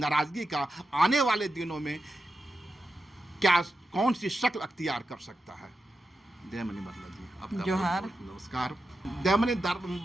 का आने वाले दिनों में क्या कौन सी शक्ल अख्तियार कर सकता है। दयामणि बारला जी, आपका जोहार। नमस्कार। दयामणि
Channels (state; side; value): normal; both; correlation 0.90